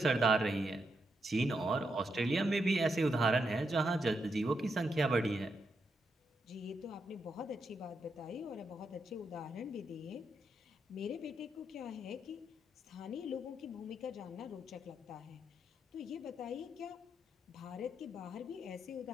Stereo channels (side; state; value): both; normal; correlation 0.82